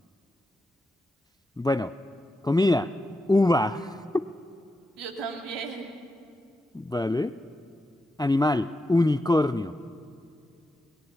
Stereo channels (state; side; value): normal; both; correlation 0.87